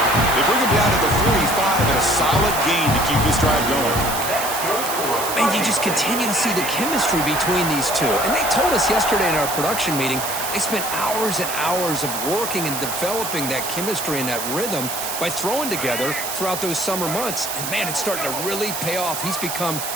bring him down to the 45 and a solid gain to keep this drive going. And you just continue to see the chemistry between these two. And they told us yesterday in our production meeting, they spent hours and hours of working and developing that chemistry and that rhythm by throwing together throughout those summer months. And, man, it's starting to really pay off. He's become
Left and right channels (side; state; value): right; noise; hiss, 5 dB below the sound